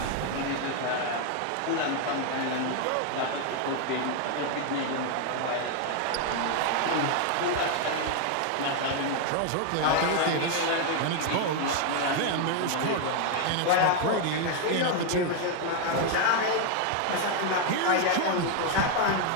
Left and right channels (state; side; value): different; both; correlation 0.01